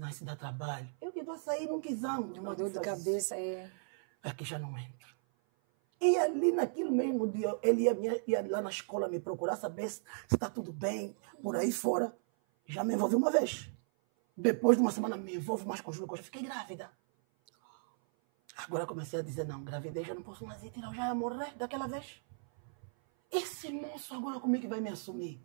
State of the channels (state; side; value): silent; left; 54 dB below the other